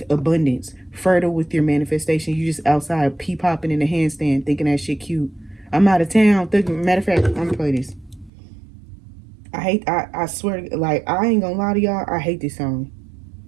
abundance. Fertile with your manifestation. You just outside pee-popping in the handstand thinking that shit cute. I'm out of town. Matter of fact, I'm going to play this. I swear, like, I ain't gonna lie to y'all, I hate this song.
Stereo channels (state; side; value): drops out; left; at 8.3 s